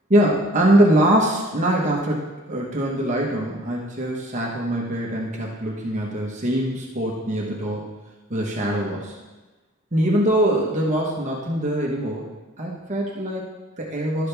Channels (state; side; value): normal; both; correlation 0.54